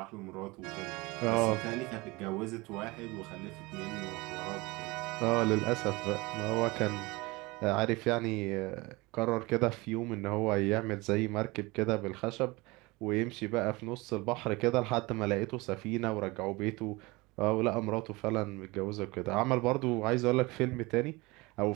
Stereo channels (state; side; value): quieter; left; 23.5 dB